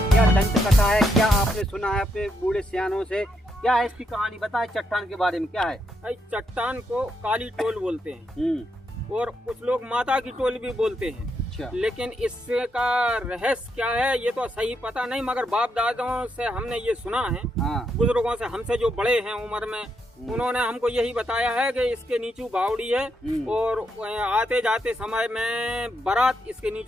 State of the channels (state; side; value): normal; both; correlation 0.79